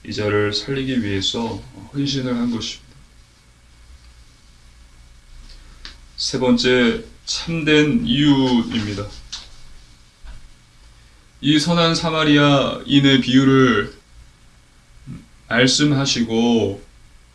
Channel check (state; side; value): identical; both; correlation 1.00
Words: 이 자를 살리기 위해서 헌신을 한 것입니다. 세 번째, 참된 이유입니다. 이 선한 사마리아인의 비유를 말씀하시고